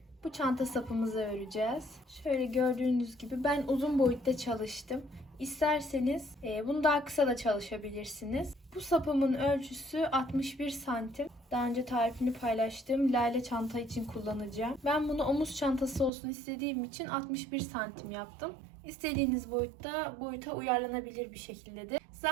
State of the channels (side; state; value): left; drops out; at 16.1 s